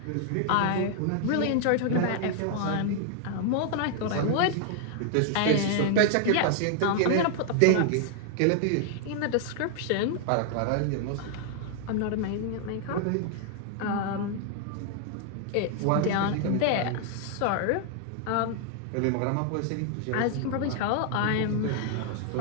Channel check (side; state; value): both; different; correlation 0.00